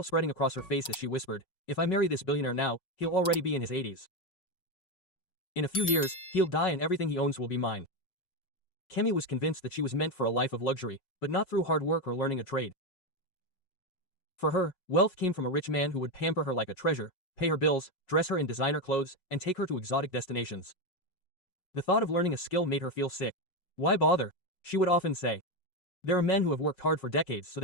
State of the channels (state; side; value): late; right; 5.4 ms